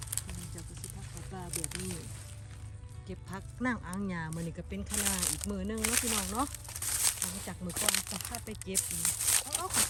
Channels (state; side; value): identical; both; correlation 1.00